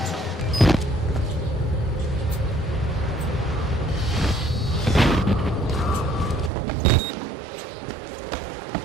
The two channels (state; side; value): drops out; left; at 6.5 s